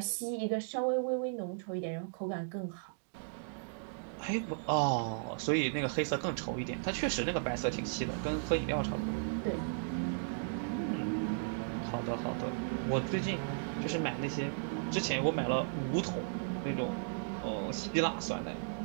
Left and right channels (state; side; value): silent; left; digital silence